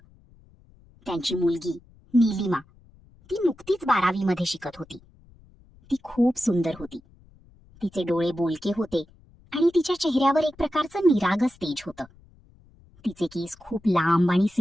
त्यांची मुलगी नीलिमा, ती नुकतीच 12वी मध्ये शिकत होती. ती खूप सुंदर होती. तिचे डोळे बोलके होते आणि तिच्या चेहऱ्यावर एक प्रकारचं निरागस तेज होतं. तिचे केस खूप लांब आणि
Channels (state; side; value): noise; left; rumble, 28 dB below the sound